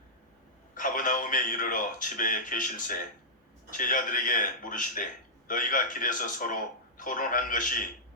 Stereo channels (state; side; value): normal; both; correlation -0.13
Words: 가버나움에 이르러 집에 계실새 제자들에게 물으시되 너희가 길에서 서로 토론한 것이